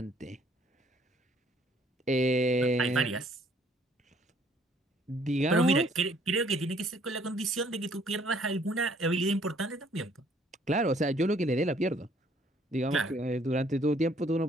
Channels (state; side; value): normal; both; correlation 0.62